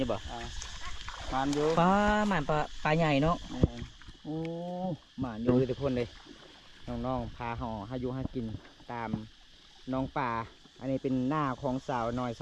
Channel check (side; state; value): both; identical; correlation 1.00